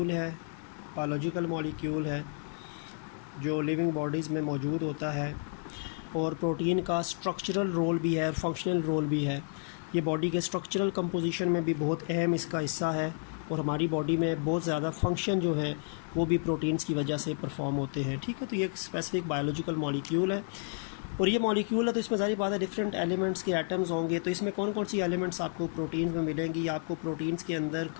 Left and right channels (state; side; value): silent; right; 57 dB below the other